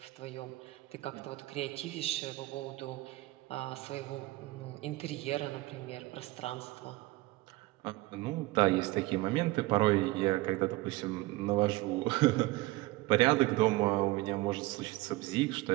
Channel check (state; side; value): quieter; left; 20.1 dB